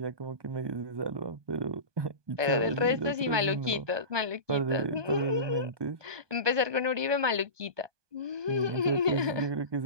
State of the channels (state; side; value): late; left; 1.2 ms